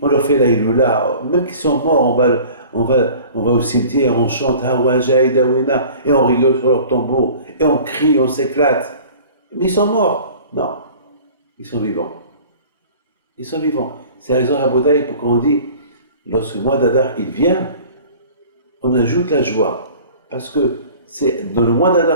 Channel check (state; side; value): inverted; both; correlation -0.45